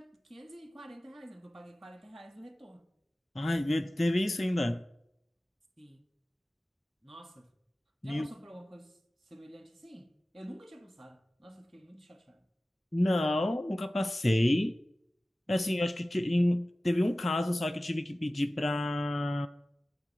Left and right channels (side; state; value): both; normal; correlation 0.96